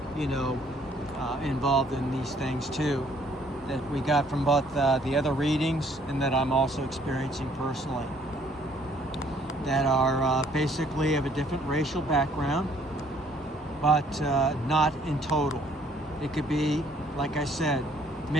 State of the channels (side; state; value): both; normal; correlation 0.62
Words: involved in these things too, that we got from both the other readings and that I'm also experiencing personally, that are basically of a different racial background, but not in total. It could be, like I said,